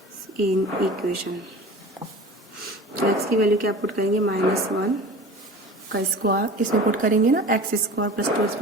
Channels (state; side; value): normal; both; correlation 0.38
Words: in equation. तो x की वैल्यू क्या पुट करेंगे, -1 का स्क्वायर इसमें पुट करेंगे ना, x² + 2x